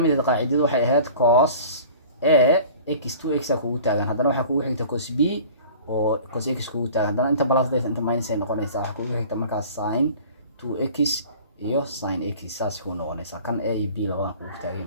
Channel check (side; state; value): both; inverted; correlation -0.45